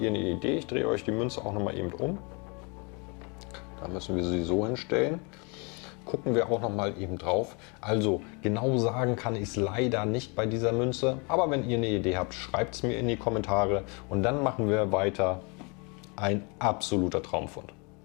eine Idee. Ich drehe euch die Münze auch noch mal eben um. Da müssen wir sie so hinstellen. Gucken wir auch noch mal eben drauf. Also genau sagen kann ich es leider nicht bei dieser Münze. Aber wenn ihr eine Idee habt, schreibt es mir in die Kommentare. Und dann machen wir weiter. Ein absoluter Traumfund.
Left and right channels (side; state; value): right; quieter; 31.7 dB